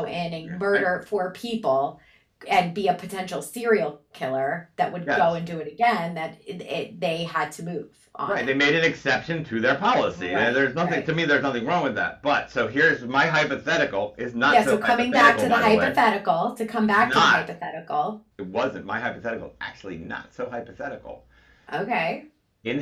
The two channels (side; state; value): both; identical; correlation 1.00